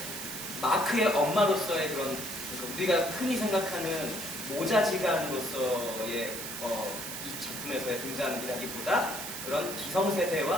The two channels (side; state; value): right; noise; hiss, 7 dB below the sound